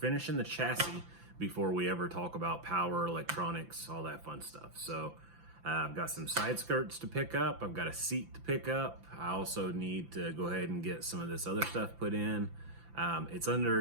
the chassis before we ever talk about power, electronics, all that fun stuff. So I've got some side skirts to pick up. I've got a seat to pick up. I also need to go ahead and get some of this other stuff put in. It's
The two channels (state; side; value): late; left; 5.9 ms